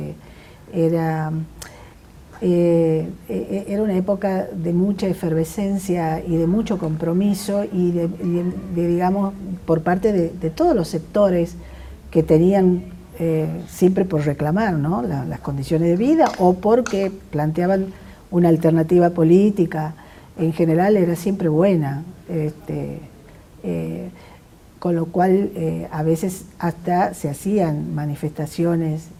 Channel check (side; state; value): both; identical; correlation 1.00